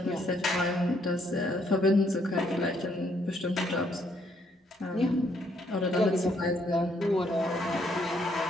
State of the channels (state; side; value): normal; both; correlation 0.70